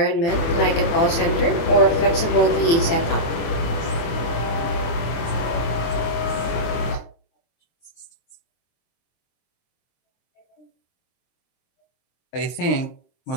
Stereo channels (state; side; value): late; right; 24 ms